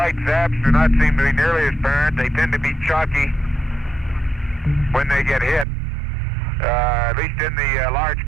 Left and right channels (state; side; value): drops out; left; at 5.7 s